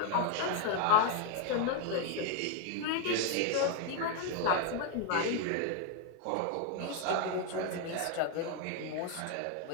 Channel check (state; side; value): different; both; correlation 0.01